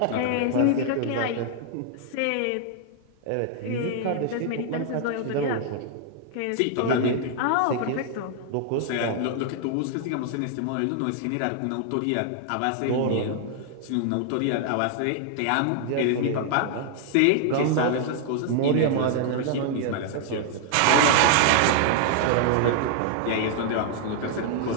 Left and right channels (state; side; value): different; both; correlation 0.00